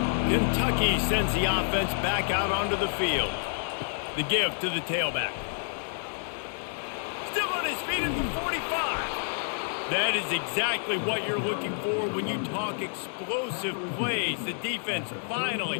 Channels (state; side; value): silent; right; digital silence